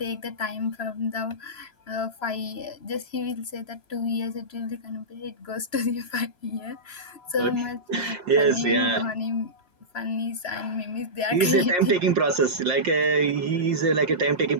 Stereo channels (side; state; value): right; late; 3.0 ms